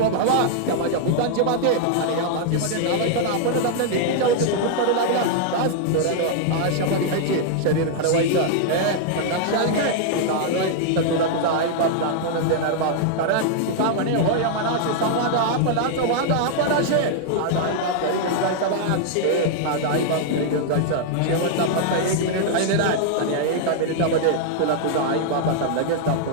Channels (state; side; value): different; both; correlation -0.01